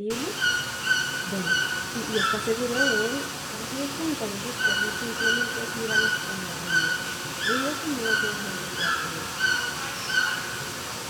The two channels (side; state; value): both; identical; correlation 1.00